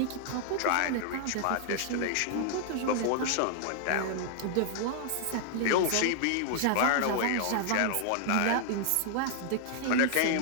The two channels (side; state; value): both; different; correlation -0.01